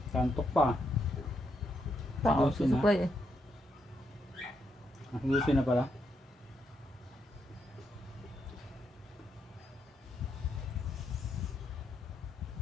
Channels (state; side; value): normal; both; correlation 0.79